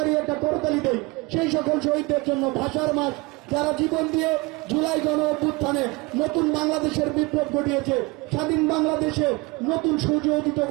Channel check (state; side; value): quieter; left; 25.2 dB